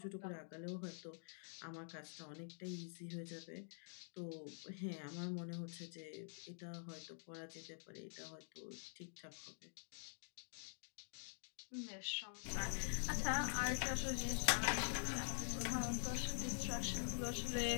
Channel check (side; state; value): right; silent; digital silence